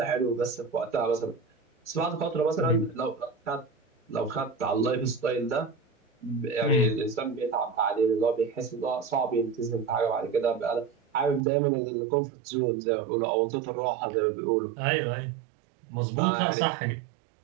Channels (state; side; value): drops out; left; at 11.4 s